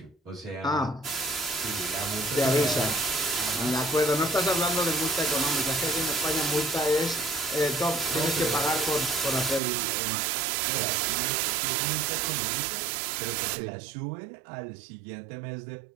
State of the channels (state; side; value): drops out; left; at 9.6 s